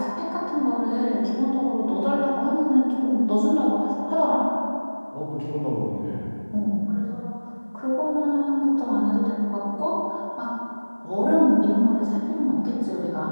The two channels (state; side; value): inverted; both; correlation -1.00